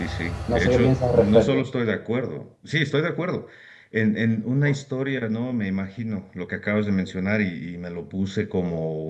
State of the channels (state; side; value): identical; both; correlation 1.00